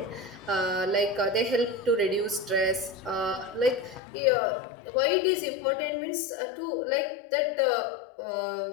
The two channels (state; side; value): drops out; right; at 4.0 s